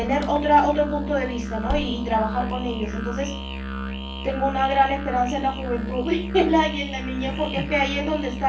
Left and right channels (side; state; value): both; identical; correlation 1.00